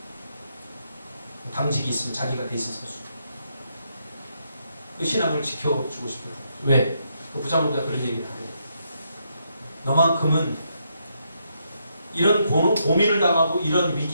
당직이 있으면 자기가 대신 서주. 그 신앙을 지켜주고 싶어요. 왜? 그 부장검사가 그런 얘기를 하래요. 너만큼은 이런 고민을 당하고 이런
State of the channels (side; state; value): both; inverted; correlation -0.78